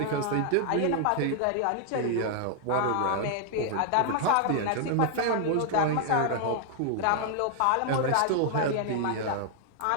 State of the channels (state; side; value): different; both; correlation 0.00